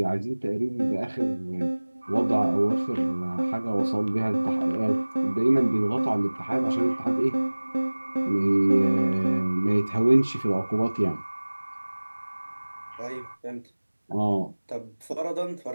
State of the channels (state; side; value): inverted; both; correlation -1.00